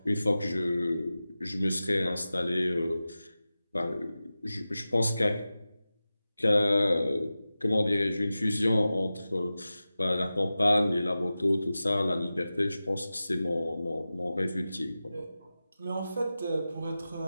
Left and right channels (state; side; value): inverted; both; correlation -0.95